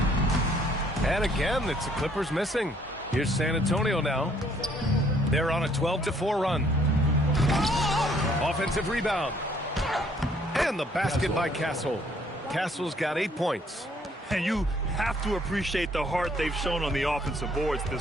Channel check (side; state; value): both; normal; correlation 0.63